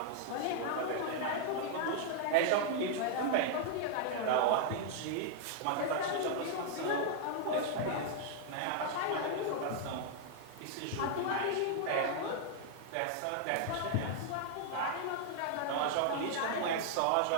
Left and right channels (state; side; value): different; both; correlation -0.01